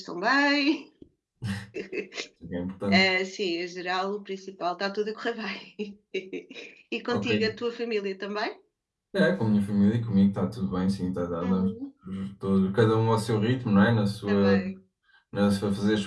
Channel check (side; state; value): both; identical; correlation 1.00